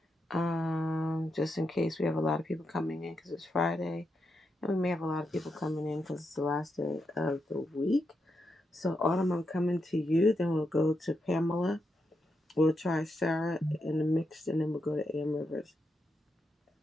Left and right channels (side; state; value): both; normal; correlation 0.84